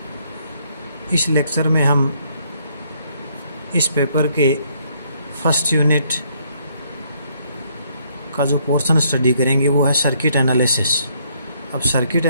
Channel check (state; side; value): inverted; both; correlation -0.68